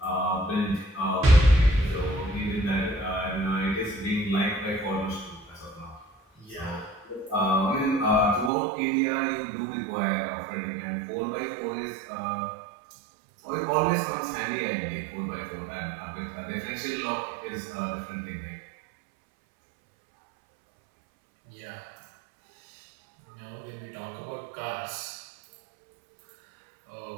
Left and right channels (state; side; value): drops out; left; at 8.5 s